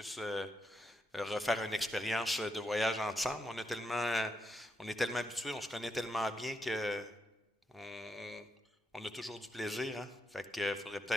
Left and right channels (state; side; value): normal; both; correlation 0.83